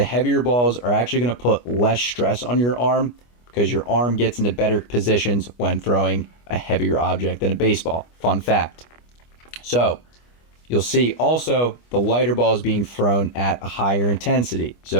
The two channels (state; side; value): late; right; 25 ms